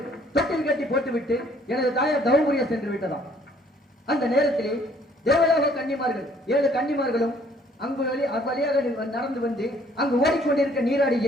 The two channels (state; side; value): normal; both; correlation 0.61